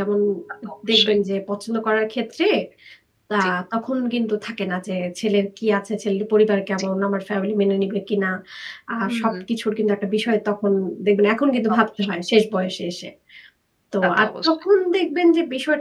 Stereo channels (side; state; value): both; identical; correlation 1.00